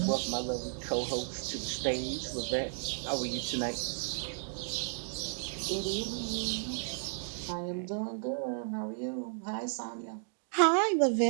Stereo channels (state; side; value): silent; left; digital silence